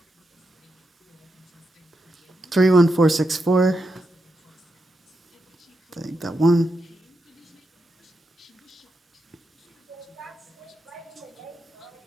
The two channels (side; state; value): both; normal; correlation 0.86